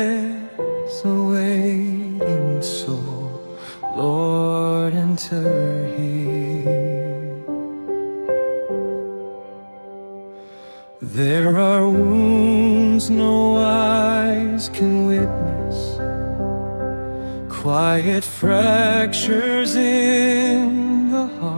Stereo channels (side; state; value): both; inverted; correlation -1.00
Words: awaiting soul, Lord, enter here. There are wounds no eyes can witness, quiet fractures in the